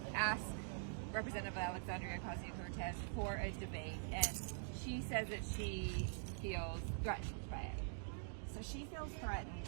ask Representative Alexandria Ocasio-Cortez for a debate? And she says that she feels threatened by it. So she feels threatened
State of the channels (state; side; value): silent; left; digital silence